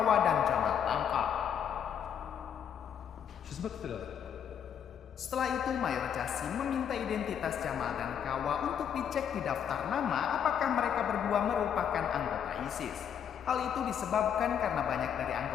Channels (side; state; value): right; quieter; 8.5 dB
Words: dan Jamal tangkap. Setelah itu Mayor Jasim meminta identitas Jamal dan Kawa untuk dicek di daftar nama apakah mereka berdua merupakan anggota ISIS. Hal itu disebabkan karena banyak dari